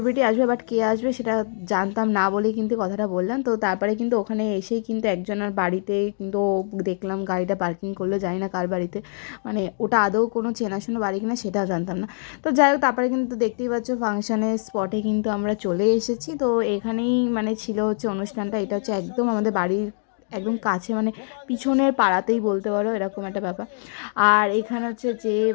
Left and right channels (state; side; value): silent; right; digital silence